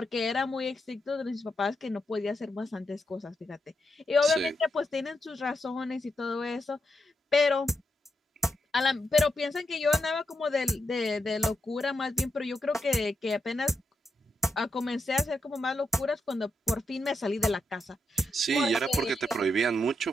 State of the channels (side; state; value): both; normal; correlation 0.84